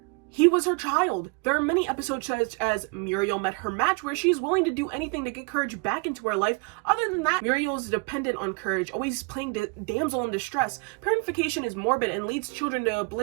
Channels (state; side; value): quieter; left; 31.3 dB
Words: he was her child. There are many episodes such as Muriel Met Her Match where she is willing to do anything to get Courage back into her life. Other than that, Muriel is dependent on Courage, always playing damsel in distress. Parentification is morbid and leads children to